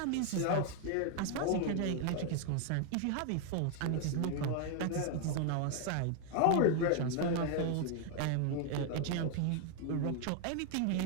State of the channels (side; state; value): both; different; correlation 0.00